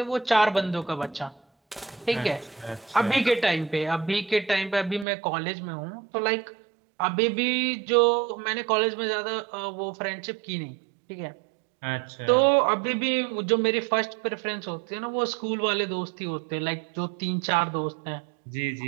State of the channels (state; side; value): drops out; left; at 5.1 s